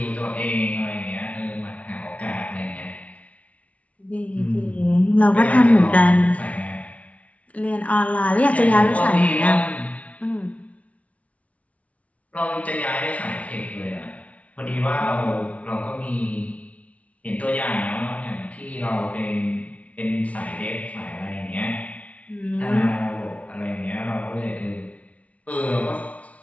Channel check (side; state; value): right; late; 0.066 ms